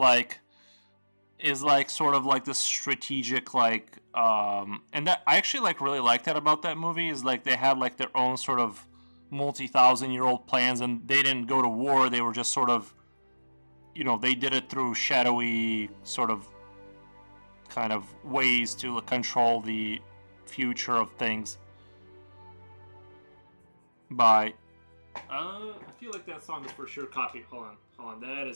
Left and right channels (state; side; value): inverted; both; correlation -1.00